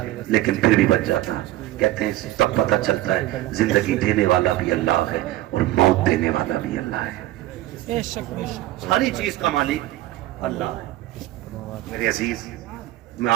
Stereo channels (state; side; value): quieter; left; 15.6 dB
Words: لیکن پھر بھی بچ جاتا. کہتے ہیں تب پتہ چلتا ہے زندگی دینے والا بھی اللہ ہے اور موت دینے والا بھی اللہ ہے. ساری چیز کا مالک اللہ ہے. میرے عزیز, میں